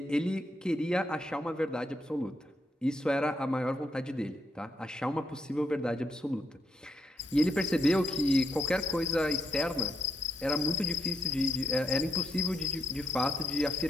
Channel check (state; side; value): normal; both; correlation 0.78